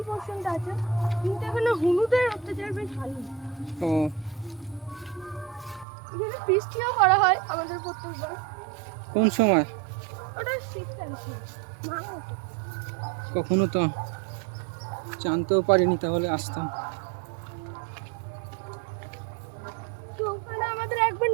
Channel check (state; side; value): drops out; left; at 5.9 s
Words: পোর্শনটা আছে, কিন্তু এখানে হলুদের অত্যাচার বেশ ভালো। ও এখানে বৃষ্টিও করা হয় আমাদের প্রত্যেকবার। কোন সময়? ওটা শীতকাল ছিল, কখনো তো জানতেও পারিনি, তাহলে আসতাম। তো ওখানে আমাদের একবার